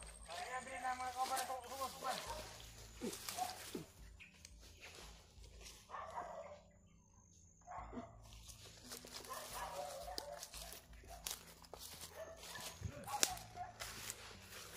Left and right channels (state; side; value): identical; both; correlation 1.00